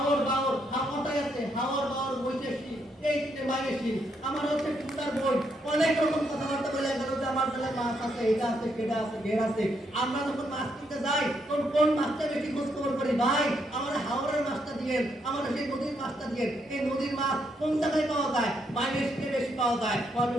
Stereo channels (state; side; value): normal; both; correlation 0.76